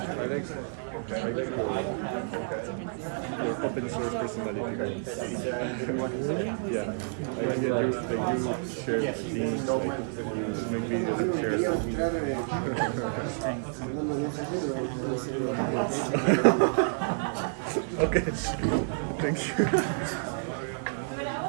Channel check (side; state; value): left; silent; digital silence